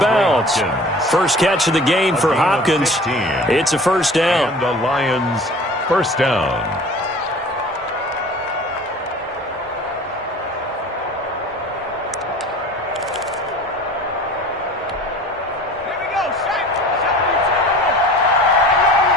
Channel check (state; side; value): normal; both; correlation 0.43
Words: bounds. First catch of the game for Hopkins. It's a first down. And the Lions first down.